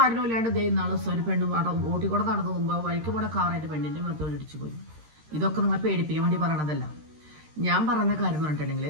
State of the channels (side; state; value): left; late; 13 ms